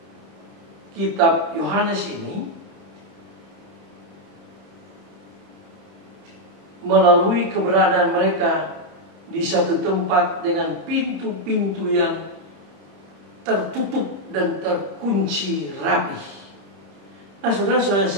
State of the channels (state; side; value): late; left; 30 ms